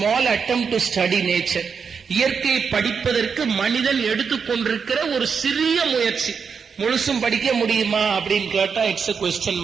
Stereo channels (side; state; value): left; quieter; 6.1 dB